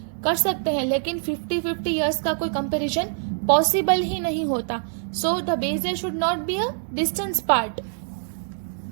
कर सकते हैं, लेकिन 50 इयर्स का कोई कंपैरिजन पॉसिबल ही नहीं होता. So the base year should not be a distance part.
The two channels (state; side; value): silent; left; digital silence